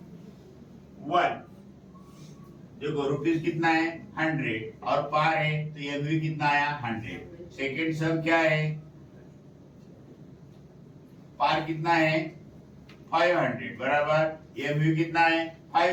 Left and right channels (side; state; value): both; identical; correlation 1.00